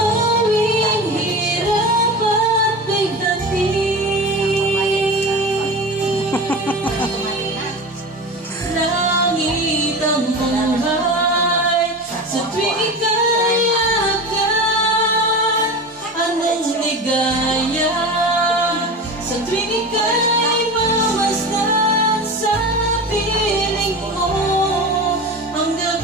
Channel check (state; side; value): normal; both; correlation 0.29